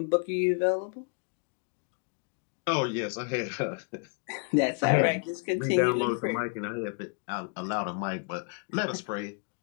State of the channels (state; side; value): quieter; right; 39.8 dB